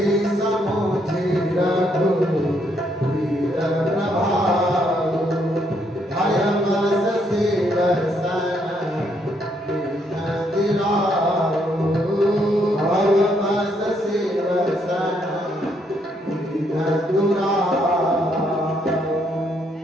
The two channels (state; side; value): normal; both; correlation 0.73